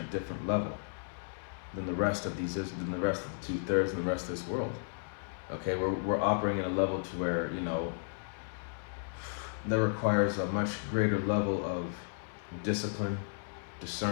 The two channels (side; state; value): right; silent; 55 dB below the other